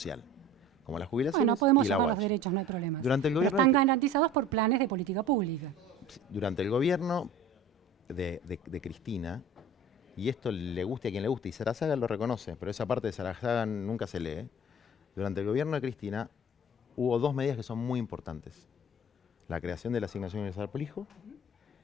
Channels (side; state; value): both; normal; correlation 0.42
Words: Como la jubilación. Bueno, podemos y la llamarlos UH. derechos, no hay problema. Durante el Pero gobierno- están garantizados por planes de política pública. Durante el gobierno de Cristina, y esto le guste a quien le guste, y Sarazaga lo reconoce, pero esa parte de Sarazaga nunca se lee. Durante el gobierno de Cristina hubo dos medidas que son muy importantes. La creación de la asignación universal por hijo